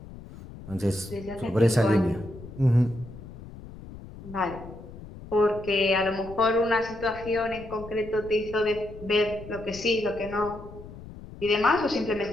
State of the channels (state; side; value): noise; left; rumble, 15 dB below the sound